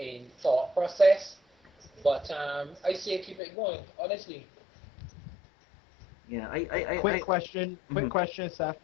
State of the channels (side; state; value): right; drops out; at 3.4 s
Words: thought process. But I say keep it going, honestly. Yeah, Quick question,